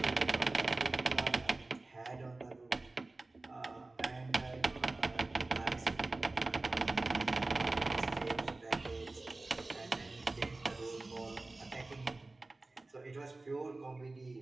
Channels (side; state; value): left; quieter; 3.1 dB